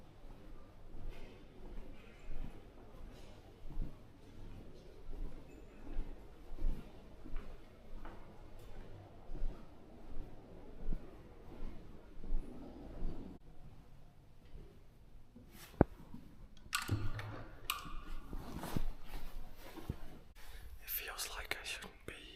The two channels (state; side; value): identical; both; correlation 1.00